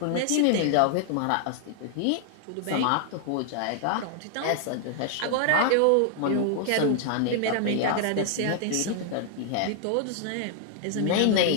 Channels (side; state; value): both; different; correlation 0.00